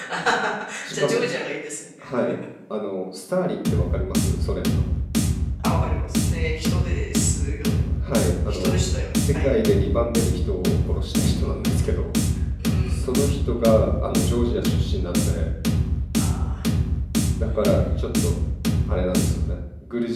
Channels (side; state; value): both; identical; correlation 1.00